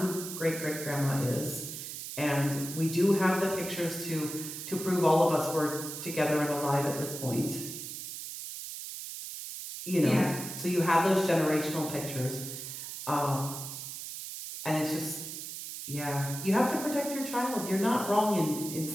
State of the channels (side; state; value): right; noise; hiss, 8 dB below the sound